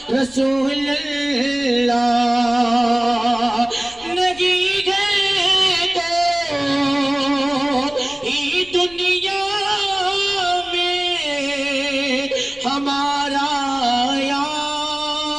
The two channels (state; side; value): noise; left; rumble, 24 dB below the sound